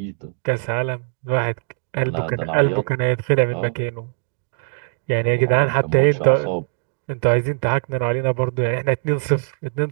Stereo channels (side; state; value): left; silent; digital silence